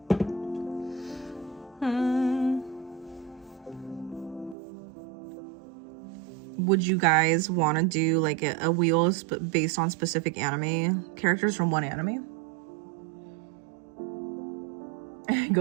Would you guys want to do like a wheel based on specific anime characters from one anime?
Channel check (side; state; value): left; drops out; at 4.5 s